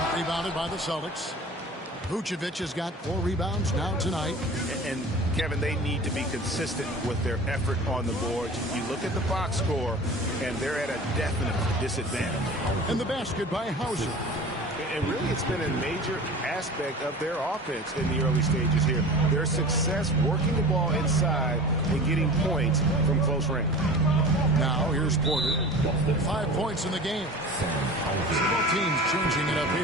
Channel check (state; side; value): normal; both; correlation 0.38